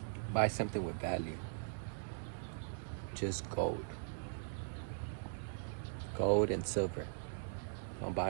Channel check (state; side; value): silent; left; digital silence